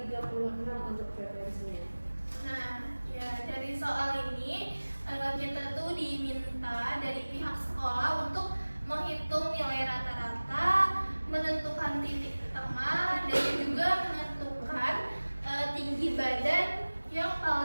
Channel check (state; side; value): inverted; both; correlation -1.00